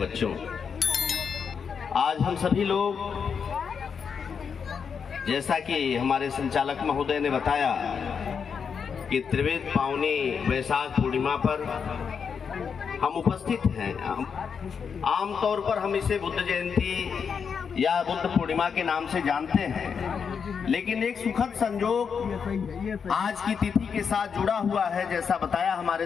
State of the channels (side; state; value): right; quieter; 6.4 dB